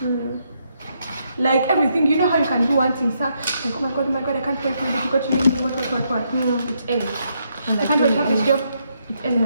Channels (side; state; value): both; inverted; correlation -0.77